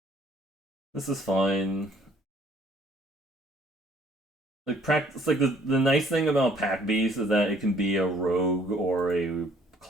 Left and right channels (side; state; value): both; normal; correlation 0.60